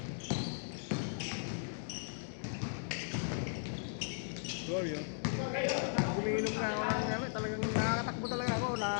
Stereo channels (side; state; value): right; silent; digital silence